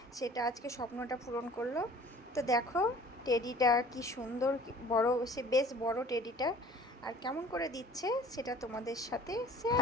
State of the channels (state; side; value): normal; both; correlation 0.48